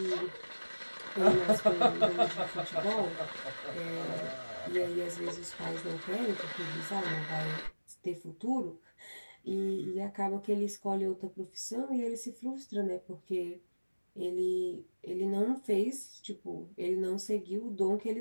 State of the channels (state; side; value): inverted; both; correlation -1.00